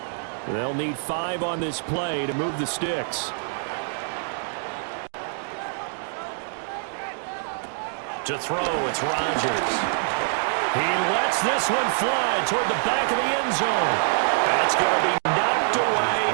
They'll need 5 on this play to move the sticks. To throw, it's Rodgers. He lets this one fly toward the back of the end zone. That's going to be knocked away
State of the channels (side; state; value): left; silent; digital silence